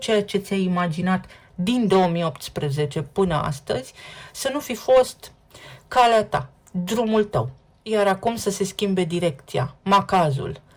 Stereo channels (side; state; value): both; identical; correlation 1.00